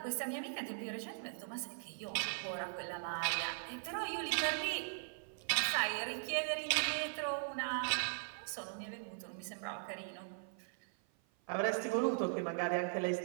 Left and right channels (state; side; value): silent; left; 51 dB below the other